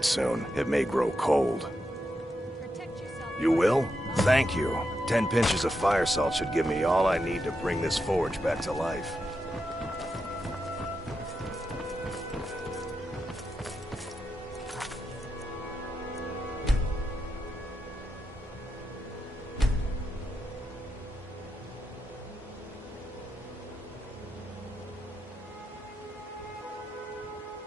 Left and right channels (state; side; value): normal; both; correlation 0.86